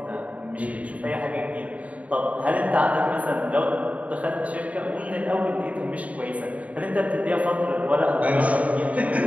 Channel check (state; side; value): late; left; 0.068 ms